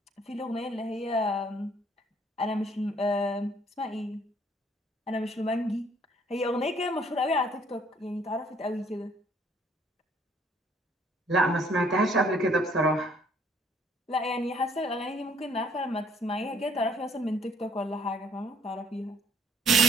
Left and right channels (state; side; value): normal; both; correlation 0.62